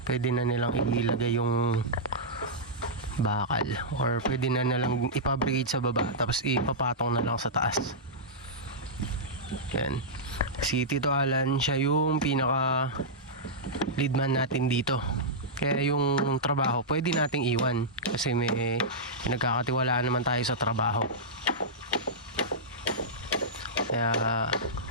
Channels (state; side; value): normal; both; correlation -0.11